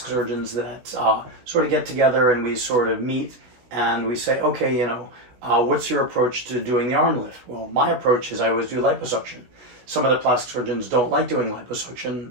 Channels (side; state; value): left; late; 16 ms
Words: surgeons that sort of get together and we sort of meet and we say, okay, what's your approach to doing the arm lift? Well, my approach is I always do liposuction. Some of the plastic surgeons don't like doing liposuction,